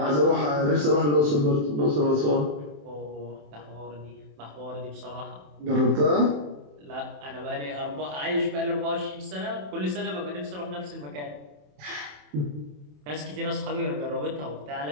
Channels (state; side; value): late; left; 27 ms